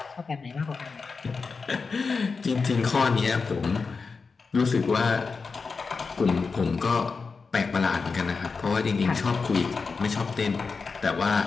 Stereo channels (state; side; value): quieter; right; 4.7 dB